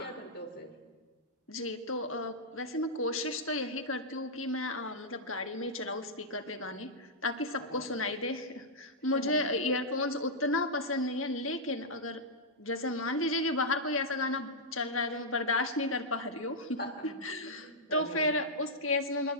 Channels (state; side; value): normal; both; correlation -0.08